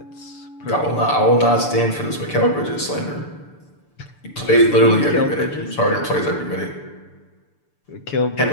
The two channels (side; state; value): right; late; 6.8 ms